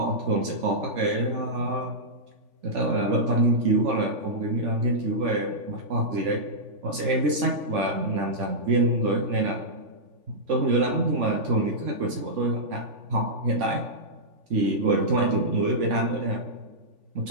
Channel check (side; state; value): left; late; 3.5 ms